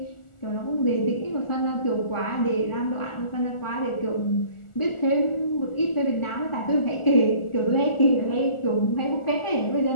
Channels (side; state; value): right; late; 1.4 ms